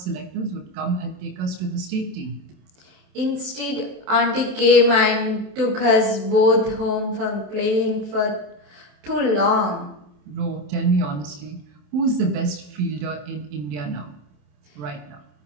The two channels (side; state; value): left; late; 27 ms